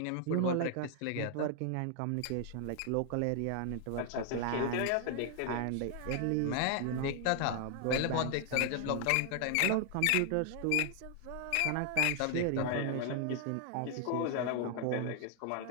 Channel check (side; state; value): both; different; correlation 0.00